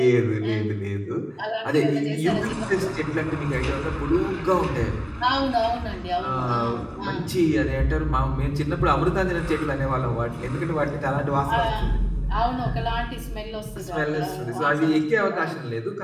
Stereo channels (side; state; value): both; identical; correlation 1.00